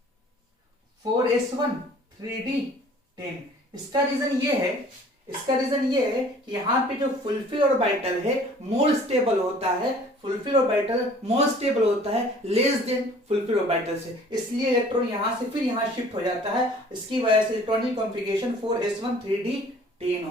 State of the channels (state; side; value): normal; both; correlation 0.51